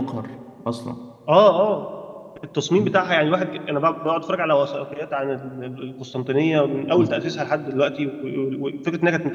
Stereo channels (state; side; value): identical; both; correlation 1.00